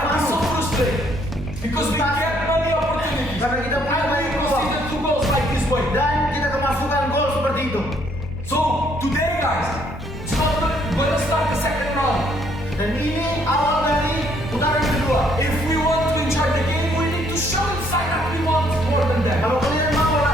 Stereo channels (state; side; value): normal; both; correlation 0.67